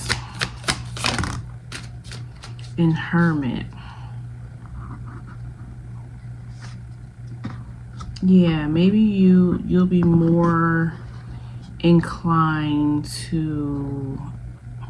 and Hermit. Yeah, maybe you'll be more inclined to.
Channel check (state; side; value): identical; both; correlation 1.00